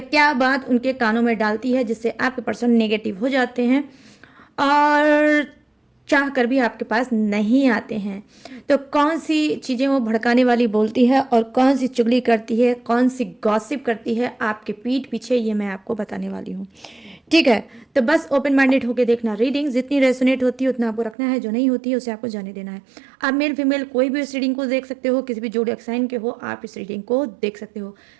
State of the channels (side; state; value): left; drops out; at 21.2 s